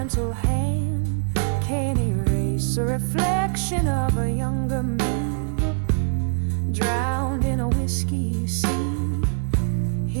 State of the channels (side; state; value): left; silent; digital silence